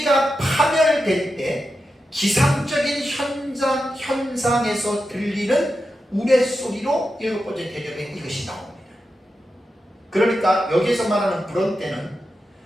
파멸될 때 기상적인 현상에서 들리는 우레소리로 7번째 대접에 이것이 나옵니다. 그러니까 여기에서 말하는 브론테는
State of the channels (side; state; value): both; normal; correlation 0.89